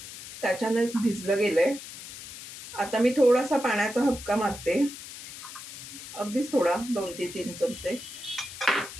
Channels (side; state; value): left; noise; hiss, 13 dB below the sound